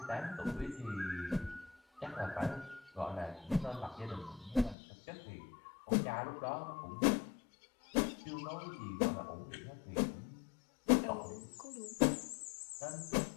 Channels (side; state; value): right; drops out; at 4.8 s